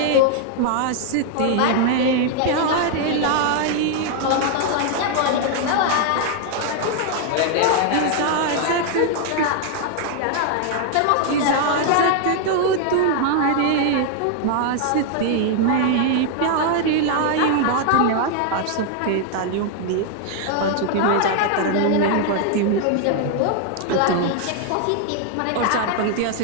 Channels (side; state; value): both; different; correlation 0.00